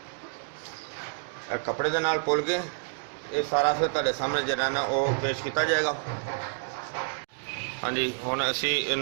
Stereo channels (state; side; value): silent; left; digital silence